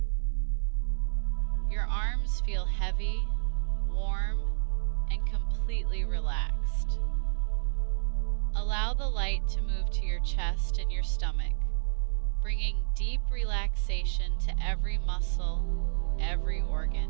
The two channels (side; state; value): left; silent; 58 dB below the other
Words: Your arms feel heavy, warm, and completely relaxed. Allow the light to move to your chest and your stomach, bringing deep relaxation to every muscle, every organ.